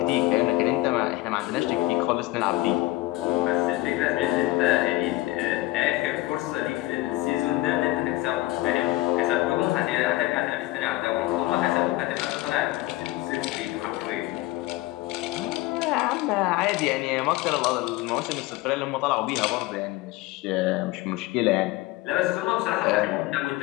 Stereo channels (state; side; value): quieter; right; 18.4 dB